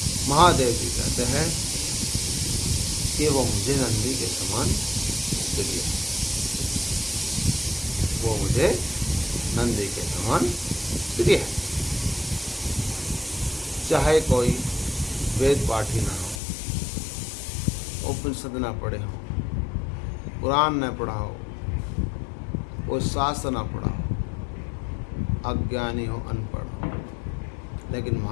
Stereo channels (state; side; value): drops out; right; at 16.4 s